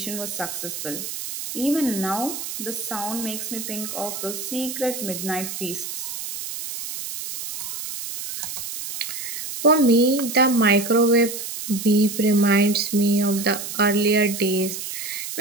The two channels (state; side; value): noise; right; hiss, 7 dB below the sound